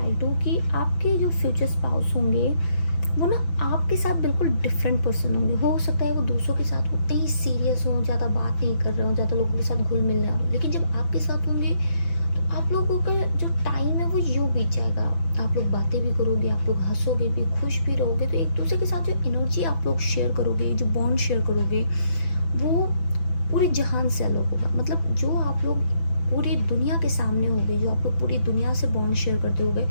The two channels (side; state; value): right; late; 6.0 ms